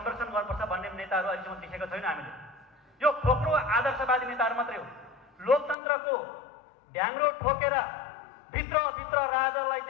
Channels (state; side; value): drops out; right; at 5.8 s